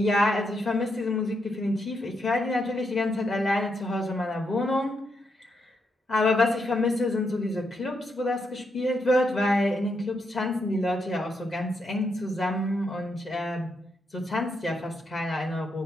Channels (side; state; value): both; normal; correlation 0.80